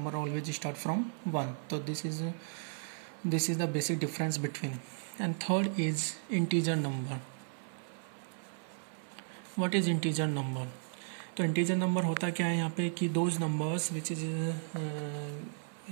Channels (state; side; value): silent; left; 55 dB below the other